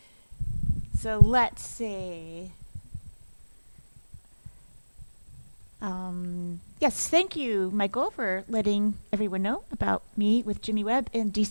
So let's see. Yes, thank you, Michael, for letting everyone know about me with Jimmy Webb in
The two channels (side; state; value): both; inverted; correlation -1.00